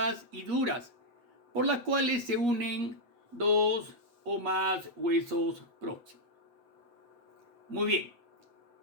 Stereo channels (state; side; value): late; left; 8.4 ms